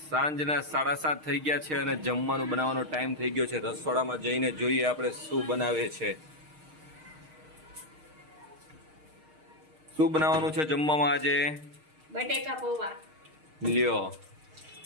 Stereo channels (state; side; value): late; left; 6.5 ms